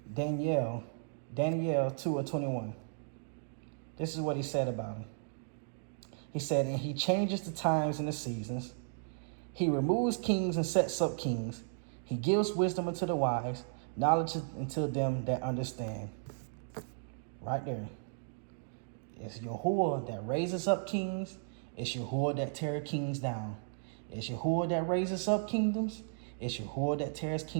Daniel 2:21. This is what he said about him. He said, and he changes the times and the seasons. He removes kings and sets up kings. He gives wisdom unto the wise, knowledge unto them that understand. Right there. It's Yahuah that raises up kings. It's Yahuah that tears kings down. It's Yahuah that raises up kingdoms. It's Yahuah that tears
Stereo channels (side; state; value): left; silent; digital silence